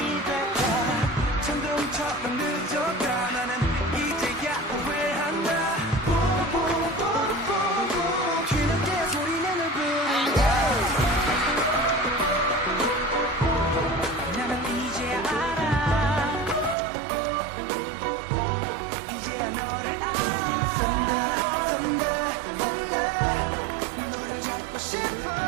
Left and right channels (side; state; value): left; drops out; at 16.8 s